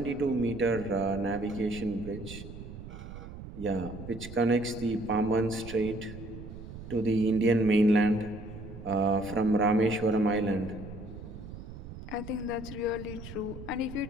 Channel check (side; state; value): right; noise; rumble, 12 dB below the sound